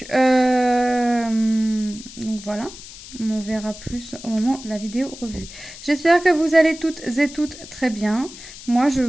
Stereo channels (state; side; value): noise; left; hiss, 15 dB below the sound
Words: voilà. On en verra plus au moment de la vidéo revue. J'espère que vous allez toutes et toutes très bien. Moi, je